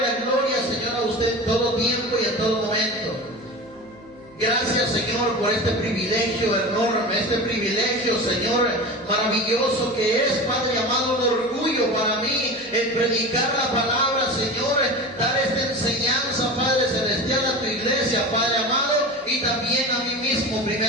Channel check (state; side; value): noise; right; hum, 29 dB below the sound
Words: la gloria, Señor, a usted en todo tiempo y en todo momento. Gracias, Señor, por este privilegio enorme, este privilegio, Señor, maravilloso que es, Padre amado, un orgullo para mí el predicar la palabra, Señor, dar esta enseñanza, Padre celestial, a tu iglesia, Padre amado, y también a mí mismo